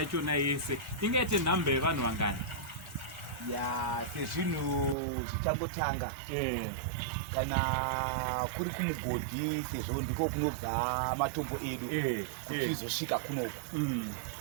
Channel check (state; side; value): drops out; left; at 5.0 s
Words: yese ingaite nhamba yevanhu vangani? Sezvinhu zvichangotanga, kana kuri kumugodhi, sezvo ndiko kunobva matombo edu kuti izosvika kunoko.